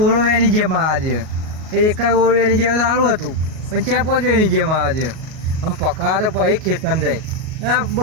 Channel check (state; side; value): late; left; 38 ms